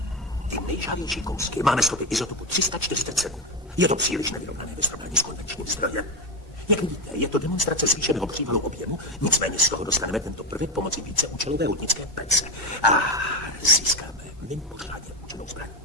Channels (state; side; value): normal; both; correlation 0.15